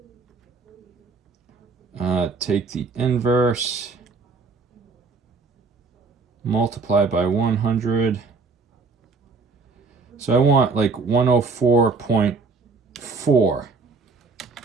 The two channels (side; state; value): left; quieter; 4.2 dB